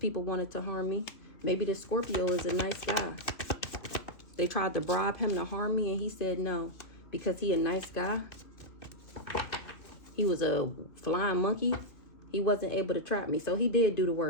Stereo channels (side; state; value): right; late; 2.6 ms